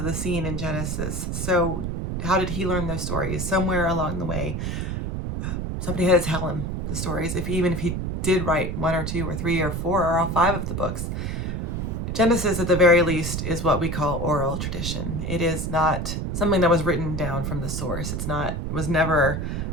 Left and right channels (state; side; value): noise; right; rumble, 2 dB below the sound